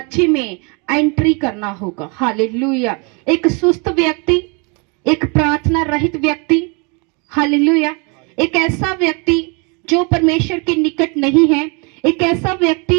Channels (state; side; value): quieter; left; 32.5 dB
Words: में एंट्री करना होगा। हालेलुया। एक सुस्त व्यक्ति, एक प्रार्थना रहित व्यक्ति, हालेलुया, एक ऐसा व्यक्ति जो परमेश्वर के निकट नहीं है, एक ऐसा